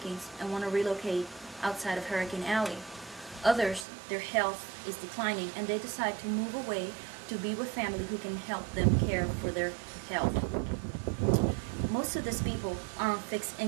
and want to relocate outside of Hurricane Alley. Others, their health is declining, and they decide to move away to be with family who can help them care for their health. Most of these people are on fixed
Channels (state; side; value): drops out; left; at 3.9 s